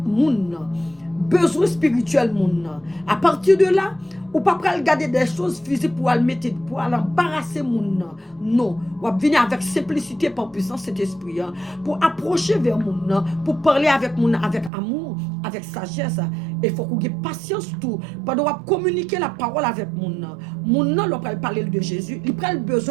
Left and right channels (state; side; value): drops out; left; at 14.7 s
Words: moun, besoin spirituel moun. À partir de là, ou pas regarder des choses physiques pour aller mettre, pour aller embarrasser moun. Non, ou venir avec simplicité par puissance cet esprit, pour approcher vers moun, pour parler avec moun avec amour, avec sagesse. Il faut qu'on ait patience tout, pendant qu'on communiquer la parole avec moun. Moun nan l'on parler de Jésus, il prend le